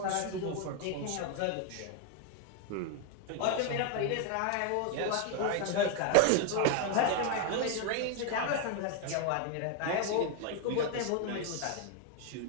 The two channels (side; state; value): both; different; correlation 0.01